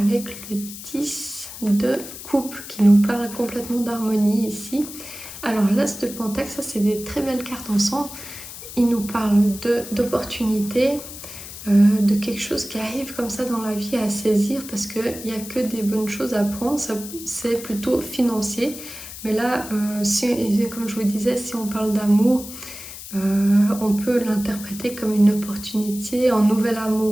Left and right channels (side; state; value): left; noise; hiss, 12 dB below the sound